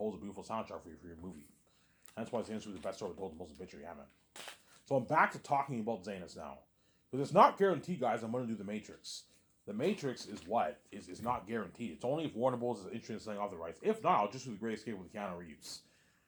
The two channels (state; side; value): identical; both; correlation 1.00